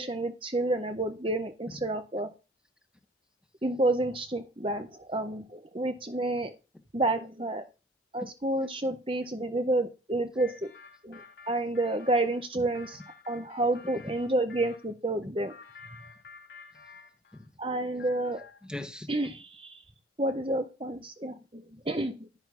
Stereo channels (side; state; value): both; normal; correlation 0.51